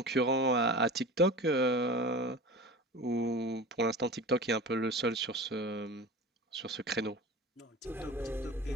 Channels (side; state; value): both; normal; correlation 0.33